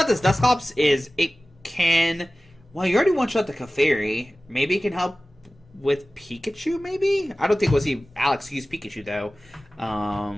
this Dusknoir is it can... Well, you already one-shot the Clefairy. Maybe it can help with Pikachu, maybe? I don't think we'll see Alex use Pikachu, though. I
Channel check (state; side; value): normal; both; correlation 0.97